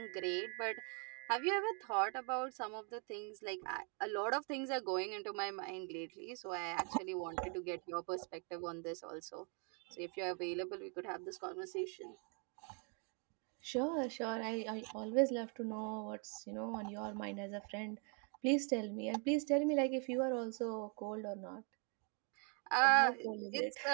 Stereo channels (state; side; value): quieter; left; 38.1 dB